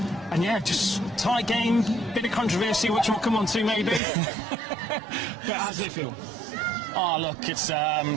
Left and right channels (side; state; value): left; drops out; at 4.0 s